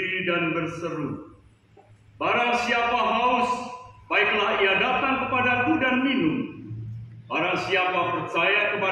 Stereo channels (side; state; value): both; identical; correlation 1.00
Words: dan berseru, "Barang siapa haus, baiklah ia datang kepadaku dan minum. Barang siapa percaya